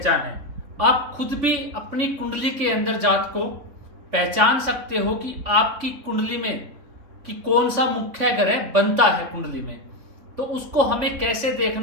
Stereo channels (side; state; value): left; late; 3.8 ms